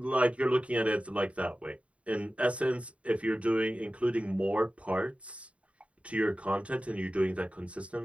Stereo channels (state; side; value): late; left; 0.064 ms